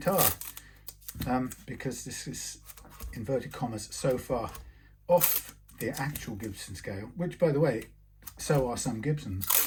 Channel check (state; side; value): identical; both; correlation 1.00